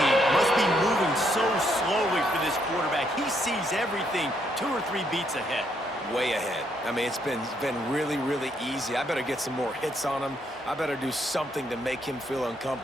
must be moving so slowly for this quarterback. He sees everything 2 or 3 beats ahead. Way ahead. I mean, it's been really, really easy. I better get some more hits on him. I better do something to make him feel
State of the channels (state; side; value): normal; both; correlation 0.73